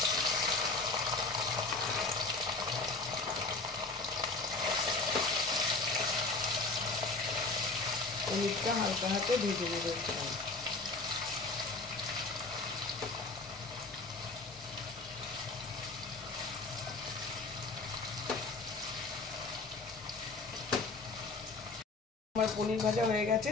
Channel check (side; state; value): right; quieter; 3.5 dB